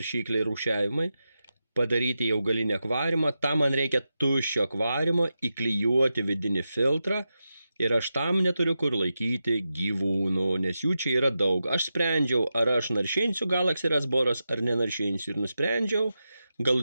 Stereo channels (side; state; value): both; inverted; correlation -0.90